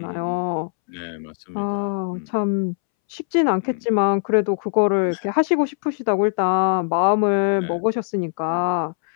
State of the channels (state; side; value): silent; right; 65 dB below the other